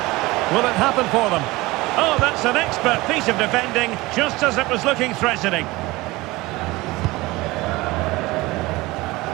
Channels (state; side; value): quieter; left; 20.8 dB